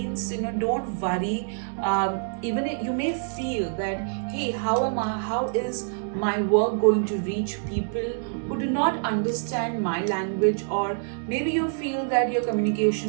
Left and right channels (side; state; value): left; silent; digital silence